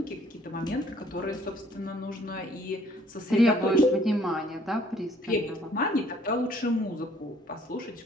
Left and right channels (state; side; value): normal; both; correlation 0.61